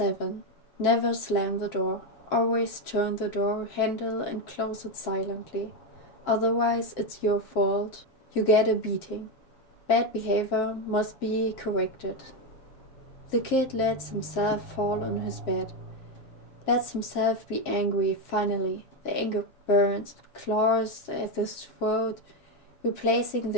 Never slam the door. Always turn the door handle and close it silently. Otherwise, it's your fault. You get a beating. Bad behavior must be corrected. The kid lets himself fall on his bed. Lets himself be angry finally. The anger burns, claws at his throat, replacing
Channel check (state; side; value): late; right; 7.5 ms